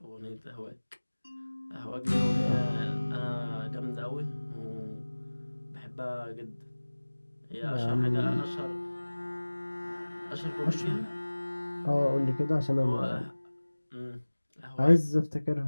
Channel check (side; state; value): both; inverted; correlation -1.00